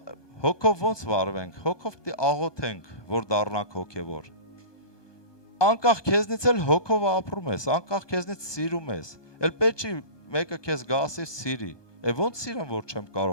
հոգով ոնց վարվենք հոգով պիտի աղոթենք որ դառնանք հոգևոր անկախ քեզնից էլ հոգով ապրում ես անկախ քեզնից սիրում ես էլ պետք չի մեկը քեզ գասի սիրի ոնց սիրեմ որ չեմ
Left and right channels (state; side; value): late; right; 1.2 ms